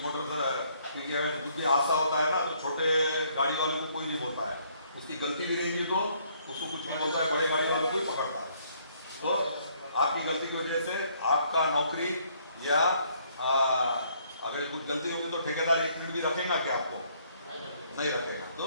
क्योंकि हादसा होता है ना, तो छोटे गाड़ी वाले को कोई नहीं बोलता है, उसकी गलती भी रहेगी तो उसको कुछ नहीं बोलता है, बड़े गाड़ी वाले को ही पकड़ता है। तो आपकी गलती की वजह से आपका नौकरी या अगर कुछ गलती होगी तो ठेकेदार 1 मिनट भी रखेगा क्या? आपको नहीं रखेगा। तो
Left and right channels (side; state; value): both; inverted; correlation -0.66